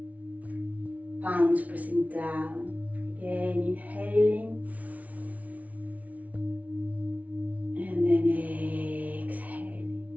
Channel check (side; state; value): left; late; 0.070 ms